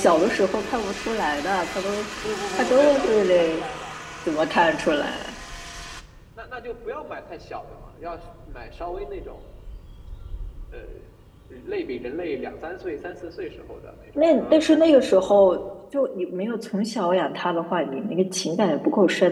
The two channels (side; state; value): both; identical; correlation 1.00